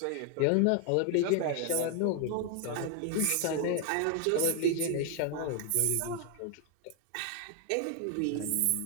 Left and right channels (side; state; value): both; different; correlation 0.00